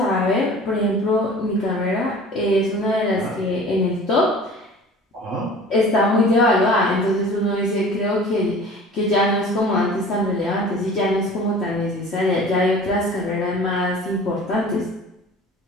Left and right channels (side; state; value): both; normal; correlation 0.43